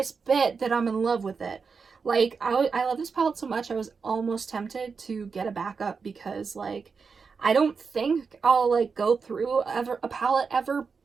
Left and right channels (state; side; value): quieter; left; 5.3 dB